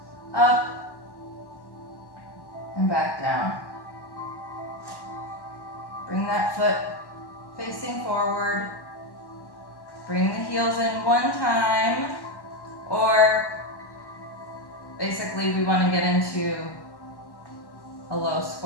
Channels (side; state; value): right; late; 1.1 ms